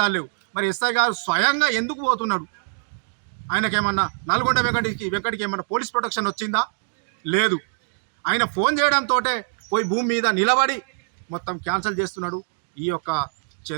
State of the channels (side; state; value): left; silent; digital silence